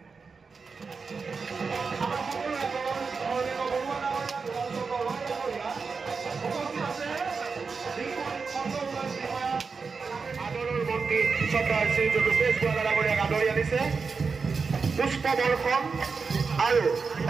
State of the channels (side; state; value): left; quieter; 4.9 dB